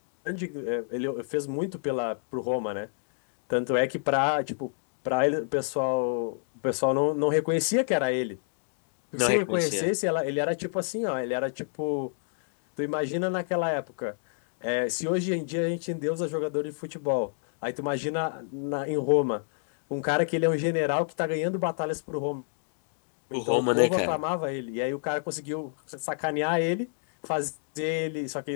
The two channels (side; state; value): right; silent; digital silence